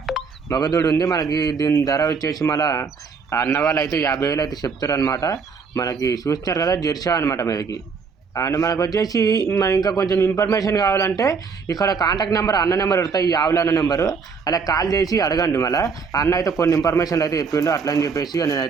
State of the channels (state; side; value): quieter; left; 5.4 dB